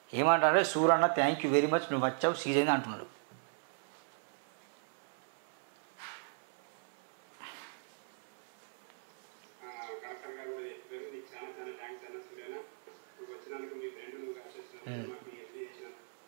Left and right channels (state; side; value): silent; left; 53 dB below the other